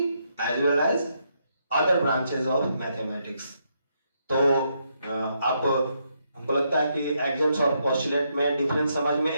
as well as other branches of mathematics। तो आप हमको लगता है कि एक्सिम्स और पोस्टुलेट में डिफरेंस समझ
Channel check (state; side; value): inverted; both; correlation -0.78